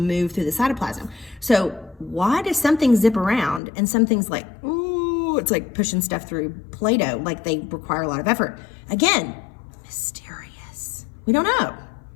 through the cytoplasm. So why does something zip around and some things like, ooh, it's like pushing stuff through Play-Doh, like they require a lot of effort? Again, mysterious. We don't know.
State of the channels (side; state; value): right; drops out; at 3.6 s